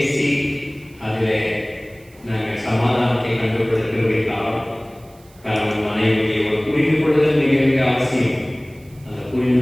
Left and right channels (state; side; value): noise; right; hiss, 28 dB below the sound